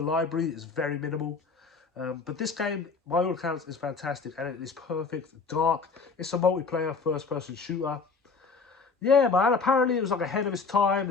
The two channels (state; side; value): quieter; right; 4.7 dB